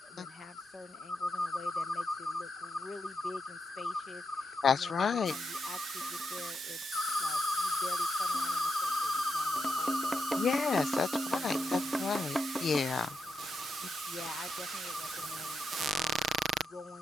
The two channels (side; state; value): both; normal; correlation 0.83